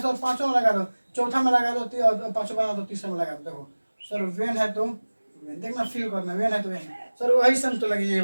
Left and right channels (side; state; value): both; inverted; correlation -1.00